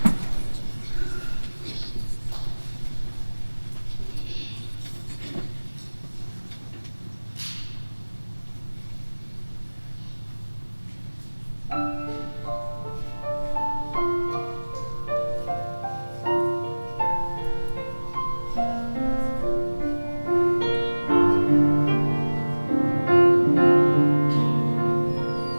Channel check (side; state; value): both; inverted; correlation -1.00